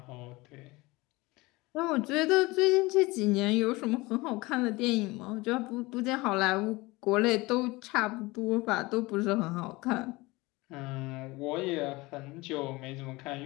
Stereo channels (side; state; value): right; quieter; 22.2 dB